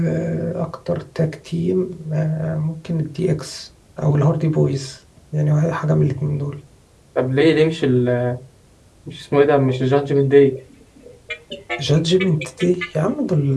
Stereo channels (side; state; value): both; identical; correlation 1.00